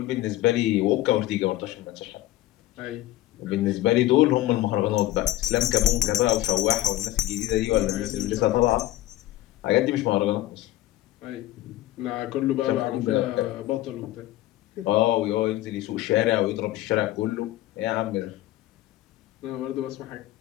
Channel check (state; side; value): quieter; right; 15.5 dB